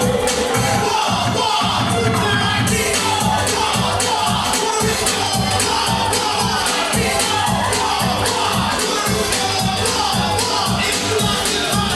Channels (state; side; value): identical; both; correlation 1.00